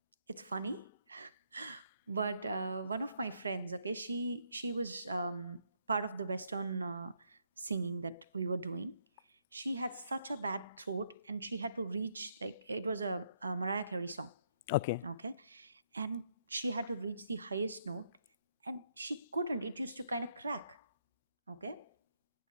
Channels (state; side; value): inverted; both; correlation -0.74